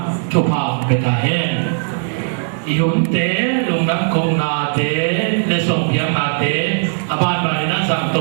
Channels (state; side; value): silent; left; digital silence